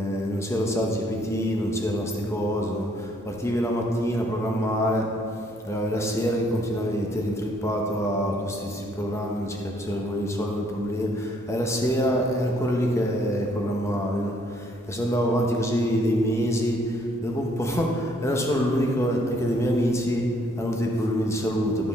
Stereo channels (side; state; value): both; normal; correlation 0.66